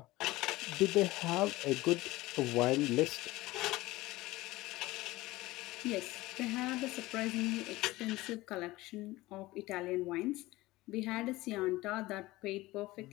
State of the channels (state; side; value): quieter; right; 19.0 dB